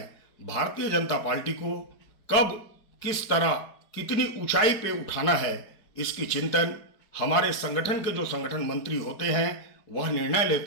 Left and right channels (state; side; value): late; right; 4.8 ms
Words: भारतीय जनता पार्टी को कब किस तरह कितनी ऊंचाई पे उठाना है, इसकी चिंतन हमारे संगठन के जो संगठन मंत्री होते हैं वह निर्णय